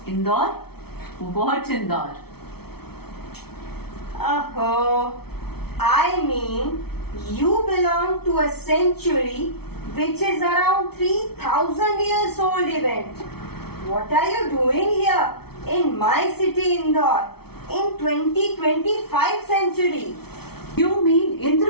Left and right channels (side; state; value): right; late; 0.96 ms